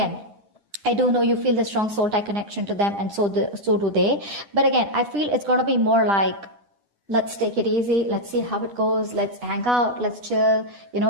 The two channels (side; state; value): left; late; 10 ms